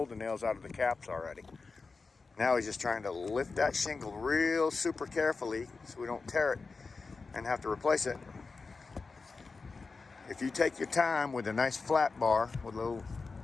the nails out of the caps already. Now he's just trying to lift that shingle real super carefully so we don't tear it and have to replace it. If you take your time with a nice flat bar with a little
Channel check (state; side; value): quieter; right; 4.3 dB